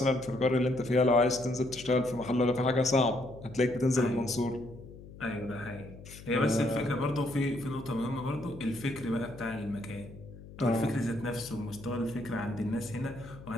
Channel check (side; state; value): left; noise; hum, 17 dB below the sound